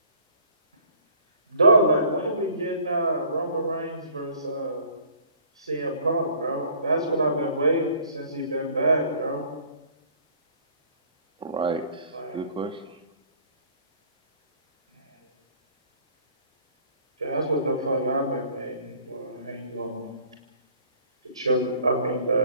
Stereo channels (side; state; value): both; inverted; correlation -0.54